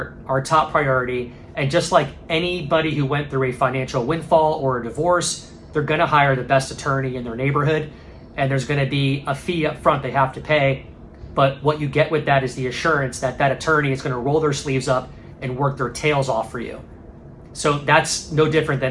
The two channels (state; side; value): identical; both; correlation 1.00